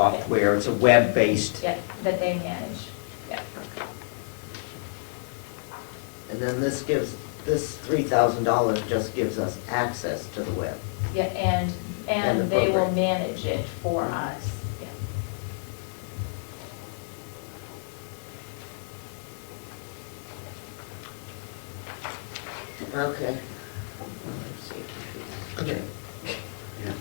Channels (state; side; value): silent; right; digital silence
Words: it's a web-based. Yeah, that they manage, yeah. And then this $3,000 just gives us access to the web. Yeah, And the and they will program. manage it for us, yeah. Okay. Okay. Yeah,